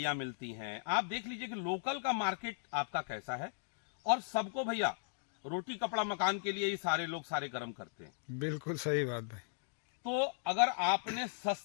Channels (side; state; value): right; silent; digital silence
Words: मिलती हैं। आप देख लीजिए कि लोकल का मार्केट आपका कैसा है, और सबको भैया रोटी कपड़ा मकान के लिए ये सारे लोग सारे कर्म करते हैं। बिल्कुल सही बात भाई। तो अगर आपने